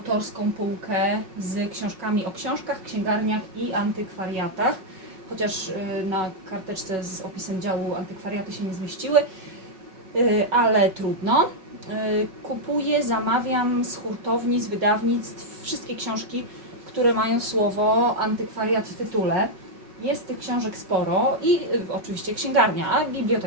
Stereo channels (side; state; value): left; late; 5.3 ms